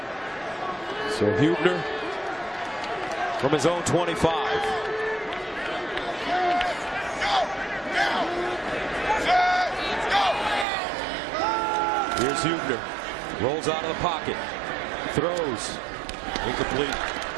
So Huebner from his own 25. Here's Huebner. Rolls out of the pocket. Throws. Incomplete.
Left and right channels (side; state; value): left; drops out; at 10.7 s